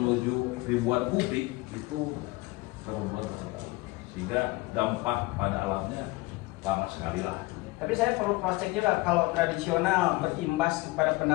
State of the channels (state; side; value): quieter; right; 22.1 dB